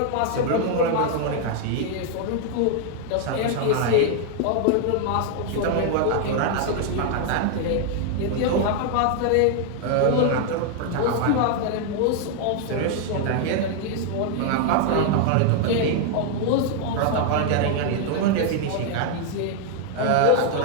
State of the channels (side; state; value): both; different; correlation 0.00